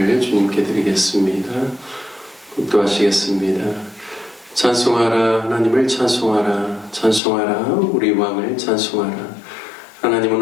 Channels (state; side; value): drops out; right; at 7.2 s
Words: 주님께 드리겠습니다. 묵도하시겠습니다. 찬송하라 하나님을 찬송하라 찬송하라 우리 왕을 찬송하라. 하나님은